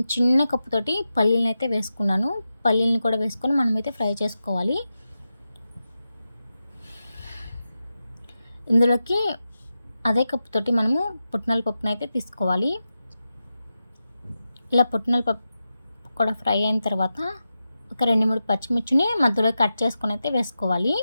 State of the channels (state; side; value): inverted; both; correlation -0.91